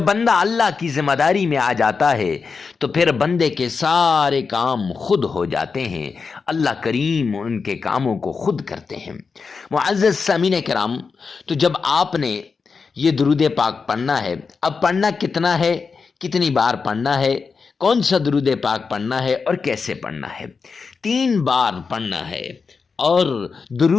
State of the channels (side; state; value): right; quieter; 5.1 dB